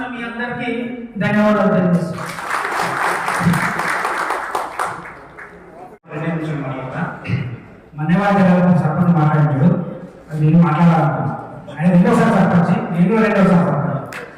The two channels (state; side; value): identical; both; correlation 1.00